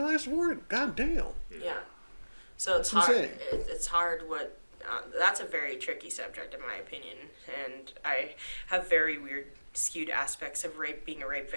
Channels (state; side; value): inverted; both; correlation -1.00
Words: for it? God damn. Yeah. So it's That's hard. insane. It's hard what that's a very tricky subject in my opinion, and I have very weird skewed aspects of rape, being a rape